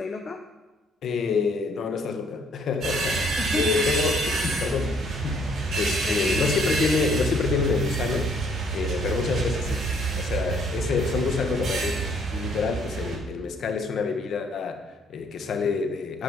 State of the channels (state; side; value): normal; both; correlation 0.64